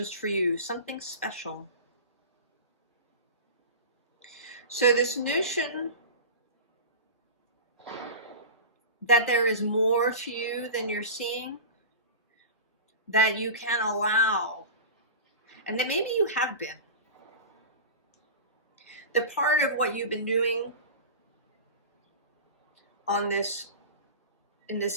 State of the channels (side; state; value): both; inverted; correlation -0.30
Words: for you, something special. So this notion that there is more to you than you're seeing, that you can allow, and that maybe you have been. The part of what you've been doing on this, in